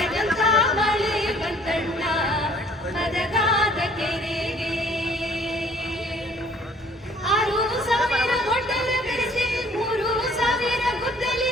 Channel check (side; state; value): both; normal; correlation 0.57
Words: ಮಳೆ ಬಂತಣ್ಣ ಮದಗಾದ ಕೆರೆಗೆ, 6,000 ಗೊಡ್ಡಲ ಬೆರೆಸಿ 3,000 ಗುದ್ದಲಿ